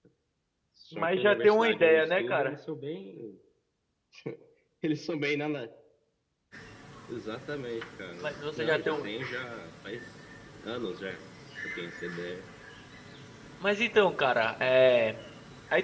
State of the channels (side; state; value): both; identical; correlation 1.00